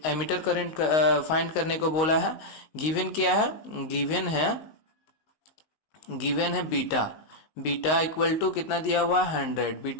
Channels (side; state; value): right; late; 19 ms